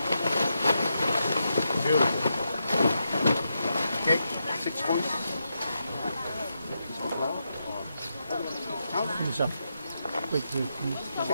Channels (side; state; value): both; inverted; correlation -0.84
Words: Beautiful. Okay, 6 points. Yourself. Wait,